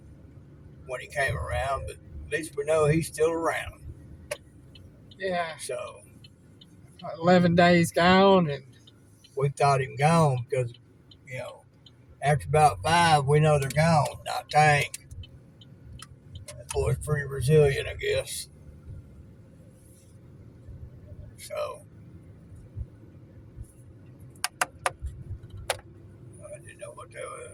when he came around, but at least we know he's still around. Yeah, So, 11 days gone, and we thought him gone because, after about 5, we know they're gone. Not Tank. That boy's pretty resilient, I guess. So, I didn't know what that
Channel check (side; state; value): both; identical; correlation 1.00